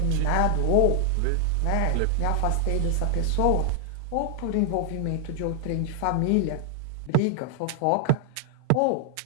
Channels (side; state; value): both; different; correlation 0.00